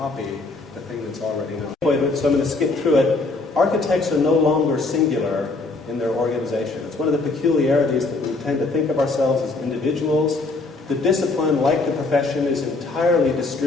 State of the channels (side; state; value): right; quieter; 3.5 dB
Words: the thing that's already known. So I'm going to skip through it. Architects are no longer singular in their organization. It's one of the peculiarities that we tend to think of ourselves as individuals. The discipline, like the profession, is entirely